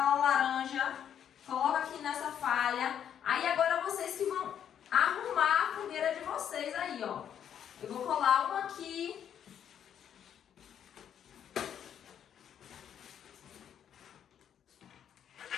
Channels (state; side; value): quieter; right; 9.2 dB